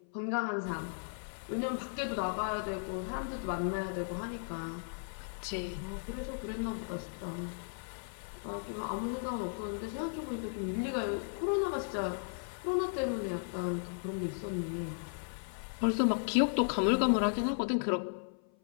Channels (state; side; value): silent; right; 54 dB below the other